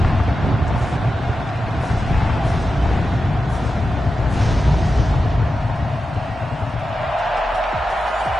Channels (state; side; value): normal; both; correlation 0.91